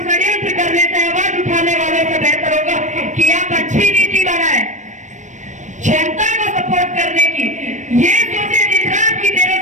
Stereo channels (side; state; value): left; late; 0.35 ms